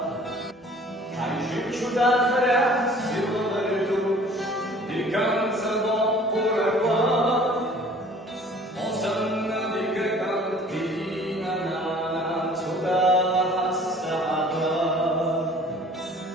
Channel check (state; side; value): normal; both; correlation 0.51